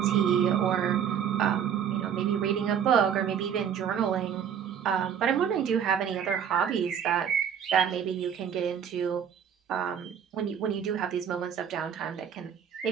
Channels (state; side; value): quieter; left; 8.3 dB